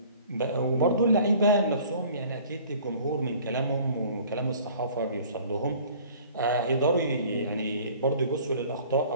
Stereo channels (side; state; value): both; inverted; correlation -0.50